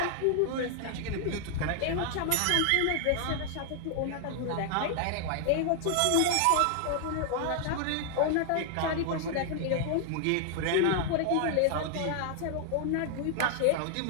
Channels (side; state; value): both; different; correlation 0.00